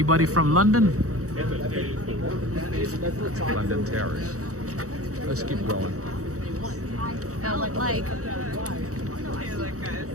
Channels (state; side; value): late; left; 0.65 ms